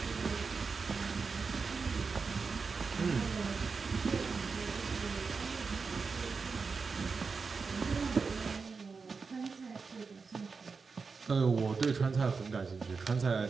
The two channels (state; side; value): quieter; left; 4.8 dB